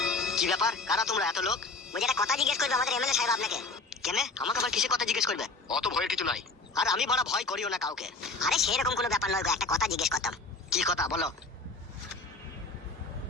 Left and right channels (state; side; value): quieter; right; 3.5 dB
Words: কি ব্যাপার, কারা তোমরা এত লোক? বলছি একটা কথা জিজ্ঞেস করবে আমাদের এমএলএ সাহেব আপনাকে। কেন আমাকে আবার কিসে কথা জিজ্ঞেস করবে? অত ভয়ের কিছু নাই। আর আমি বড় ভয় করিও না কাউকে। আরে সেরকম কোনো ব্যাপার নয় গো, একটা কথা জিজ্ঞেস করতাম। কি কথা বলো?